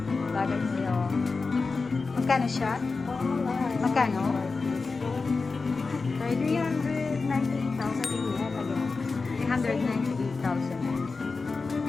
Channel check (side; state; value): right; quieter; 4.2 dB